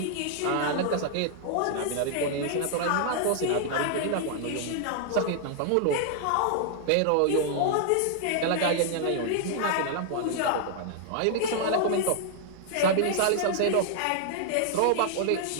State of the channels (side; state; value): both; different; correlation -0.01